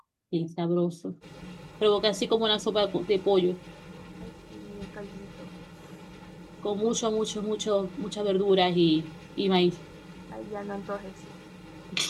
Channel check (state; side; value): identical; both; correlation 1.00